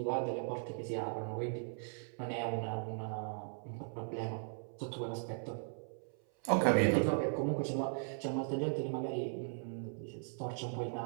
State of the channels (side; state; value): left; silent; 52 dB below the other